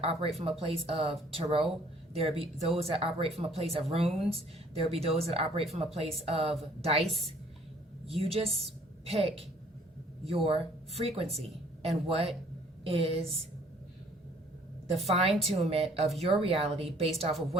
operate from a place of tarot. There will be those that operate from a place of runes. There will be those that operate from a place of dice. You just pick your frequency and what is the fine-tunement of your reality based off of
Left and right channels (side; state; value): both; normal; correlation 0.58